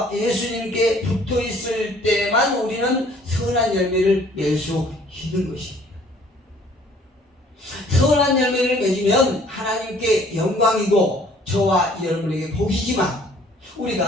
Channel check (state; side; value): normal; both; correlation 0.57